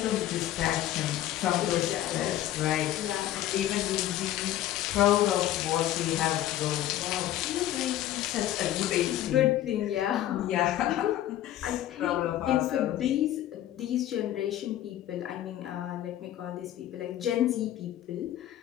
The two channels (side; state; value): right; quieter; 13.0 dB